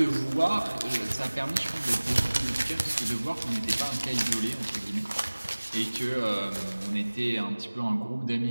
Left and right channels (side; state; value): both; inverted; correlation -1.00